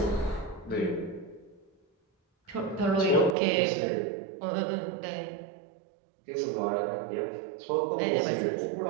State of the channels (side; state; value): left; drops out; at 3.4 s